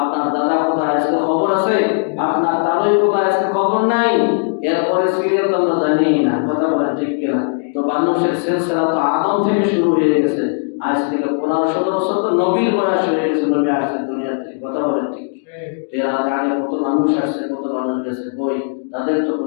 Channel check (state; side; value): silent; right; digital silence